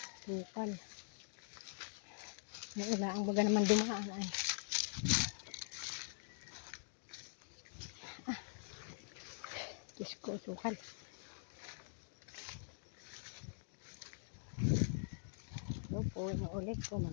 Bukal. Naula ang baga naman dumaan ay. Diyos ko, sukal. So po, inuulit ko,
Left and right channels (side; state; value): right; silent; digital silence